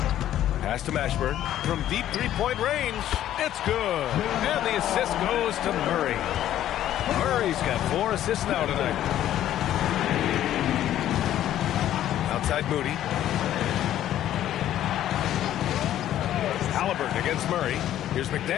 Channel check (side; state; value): right; quieter; 12.1 dB